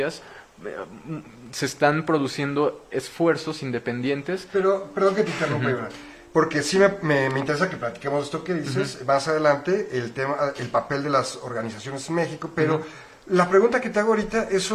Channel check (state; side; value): identical; both; correlation 1.00